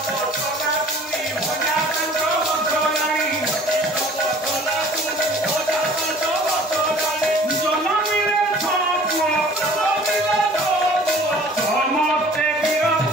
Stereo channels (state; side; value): normal; both; correlation 0.49